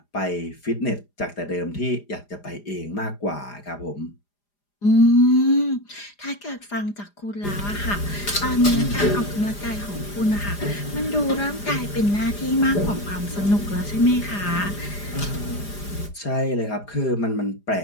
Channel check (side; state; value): right; late; 4.9 ms